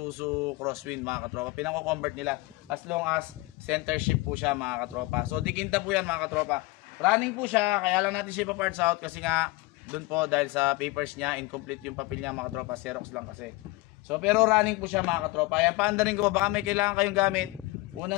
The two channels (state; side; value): quieter; right; 21.9 dB